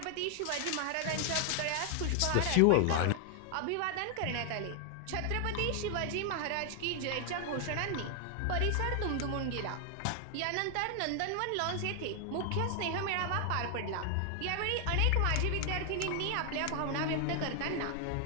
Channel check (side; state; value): both; different; correlation 0.00